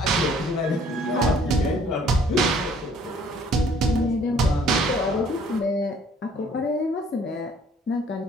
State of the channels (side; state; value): both; normal; correlation 0.58